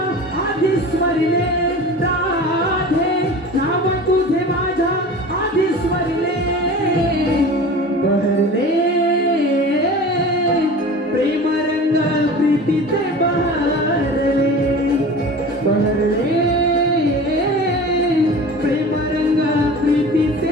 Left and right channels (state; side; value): normal; both; correlation 0.37